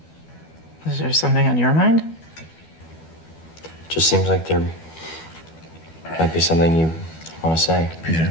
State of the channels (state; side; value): late; right; 12 ms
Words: Is there something on your mind? It just seems like there might be something you want to say.